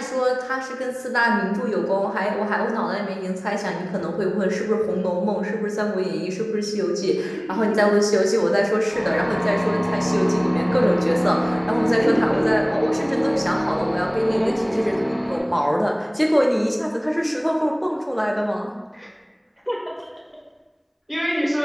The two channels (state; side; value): identical; both; correlation 1.00